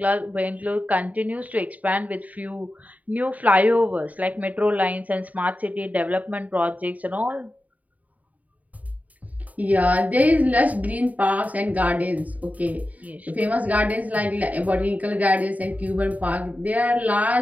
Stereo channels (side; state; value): left; late; 0.073 ms